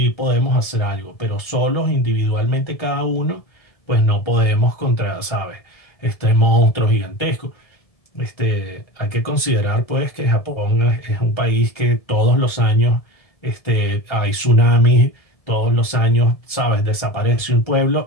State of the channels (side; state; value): right; late; 1.7 ms